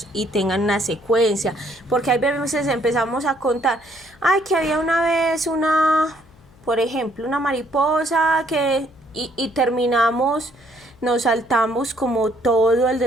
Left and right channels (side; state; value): left; noise; hum, 28 dB below the sound